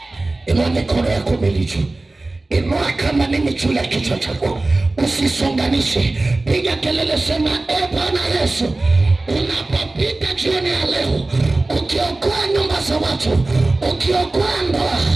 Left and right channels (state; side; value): quieter; left; 3.0 dB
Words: Inua mikono yako milicho. Inua kama nini juu ya kichwa chako. Usisonganishe. Piga kelele, sema Bwana Yesu, unapopita jioni ya leo, ukiokoa nyumba za watu, ukiokoa ndoa,